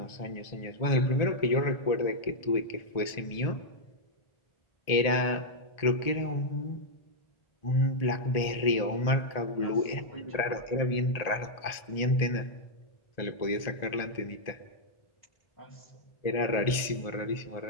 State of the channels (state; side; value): late; right; 1.8 ms